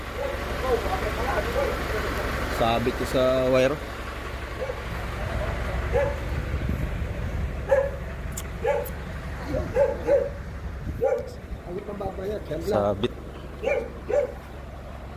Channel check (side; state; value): both; identical; correlation 1.00